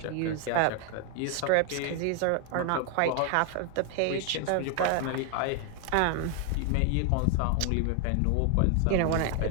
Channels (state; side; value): different; both; correlation 0.00